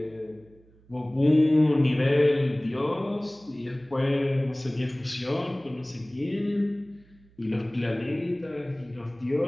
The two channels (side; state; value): right; noise; hum, 28 dB below the sound